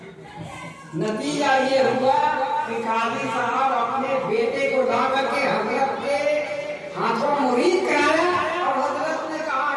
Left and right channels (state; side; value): identical; both; correlation 1.00